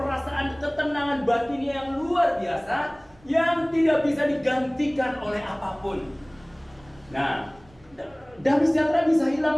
ketenangan batin yang luar biasa, yang tidak bisa digantikan oleh apapun. Nah, damai sejahtera bisa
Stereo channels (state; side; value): noise; right; rumble, 27 dB below the sound